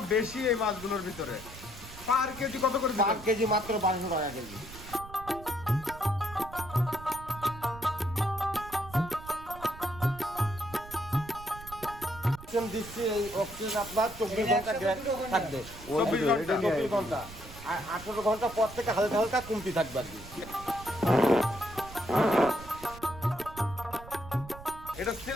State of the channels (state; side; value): noise; right; rumble, 15 dB below the sound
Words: বেশি এই মাছগুলোর ভিতরে। পার কেজি কত করে পার দিবেন? কেজি মাত্র 1200 টাকা কেজি। দিচ্ছি এই অক্সিজেন আপনার 24 ঘন্টা থাকবে। 24 ঘন্টা আর 18 ঘন্টা পর থেকে হালকা হালকা কমতি থাকবে আর কি। এটা